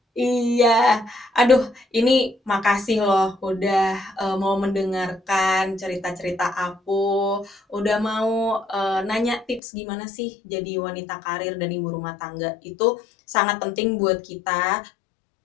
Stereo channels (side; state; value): right; drops out; at 9.6 s